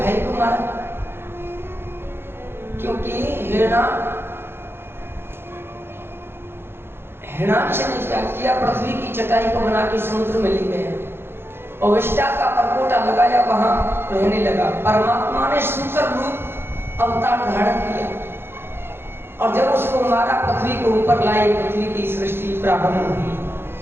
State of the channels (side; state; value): left; late; 0.11 ms